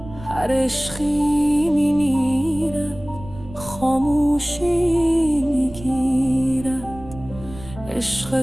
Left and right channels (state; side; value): noise; right; rumble, 16 dB below the sound